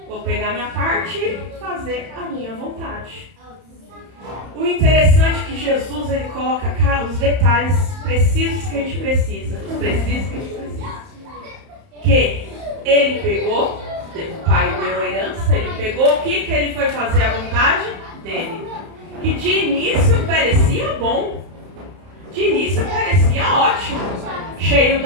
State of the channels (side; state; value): left; late; 31 ms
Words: Vou pegar minha parte e fazer a minha vontade. O interessante é que Jesus, ele coloca os detalhes precisos que a gente precisa. Que ele pegou, o pai deu a herança, ele pegou, o que ele foi fazer a vontade dele? Que de início parecia bom. De início parecia ótimo. Cheio